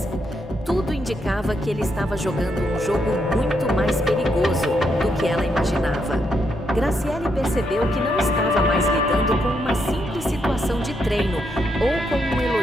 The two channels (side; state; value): both; normal; correlation 0.79